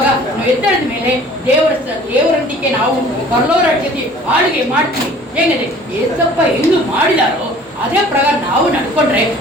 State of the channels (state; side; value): normal; both; correlation 0.49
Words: ನಾವು ಎದ್ದೇಳಿದ ಮೇಲೆ ದೇವರೊಂದಿಗೆ ನಾವು ಪರಲೋಕ ರಾಜ್ಯದಲ್ಲಿ ಆಳ್ವಿಕೆ ಮಾಡ್ತೀವಿ. ಹೇಗಿದೆ ಏಸಪ್ಪ ಹೆಂgu ಮಾಡಿದಾರೋ ಅದೇ ಪ್ರಕಾರ ನಾವು ನಡ್ಕೊಂಡ್ರೆ